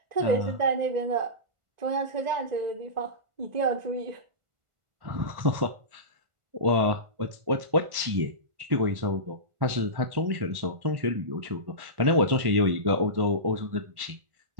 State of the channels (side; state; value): left; late; 1.1 ms